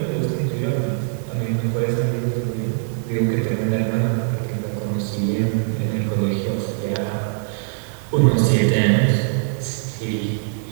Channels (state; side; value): silent; left; digital silence